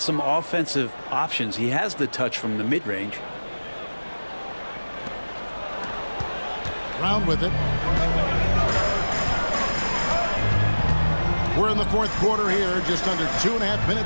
some offensive options. He has the touch from the mid-range. Round with it. We're in the fourth quarter here, just under 2.5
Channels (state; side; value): inverted; both; correlation -1.00